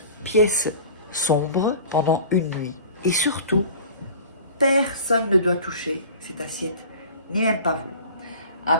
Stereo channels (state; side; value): inverted; both; correlation -0.41